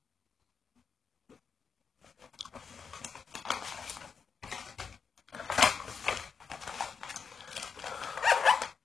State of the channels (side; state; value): right; quieter; 5.9 dB